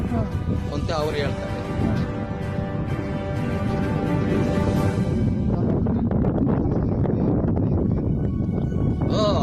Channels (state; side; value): identical; both; correlation 1.00